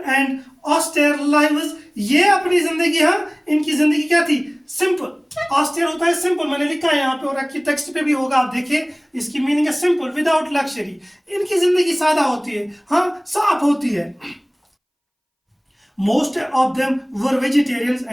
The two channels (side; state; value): both; identical; correlation 1.00